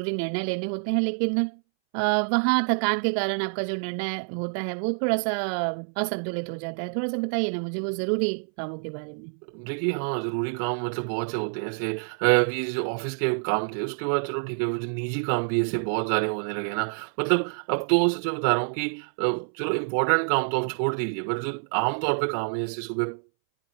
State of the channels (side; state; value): left; silent; 60 dB below the other